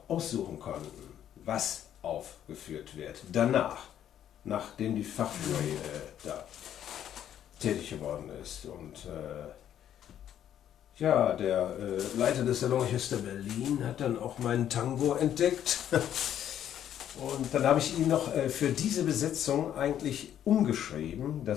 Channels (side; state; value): right; quieter; 10.4 dB